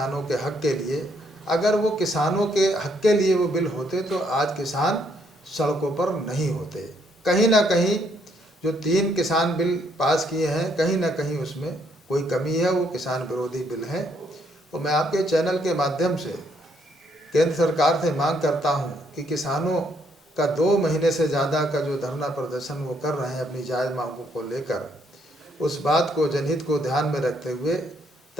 के हक के लिए, अगर वो किसानों के हक के लिए वो बिल होते तो आज किसान सड़कों पर नहीं होते। कहीं ना कहीं जो 3 किसान बिल पास किए हैं, कहीं ना कहीं उसमें कोई कमी है, वो किसान विरोधी बिल हैं। तो मैं आपके चैनल के माध्यम से केंद्र सरकार से मांग करता हूं कि किसानों का 2 महीने से ज़्यादा का जो धरना प्रदर्शन वो कर रहे हैं अपनी जायज़ मांगों को लेकर, उस बात को, जनहित को ध्यान में रखते हुए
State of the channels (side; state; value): both; normal; correlation 0.71